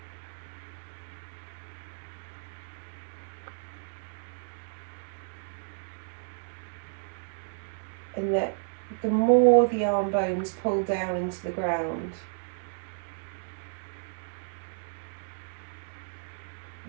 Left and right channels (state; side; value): silent; left; digital silence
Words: And that the more the arm bones pull down into the ground,